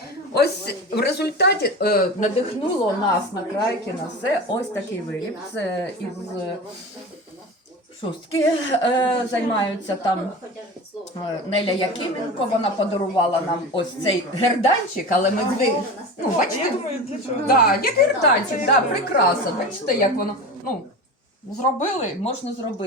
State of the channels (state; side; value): normal; both; correlation 0.30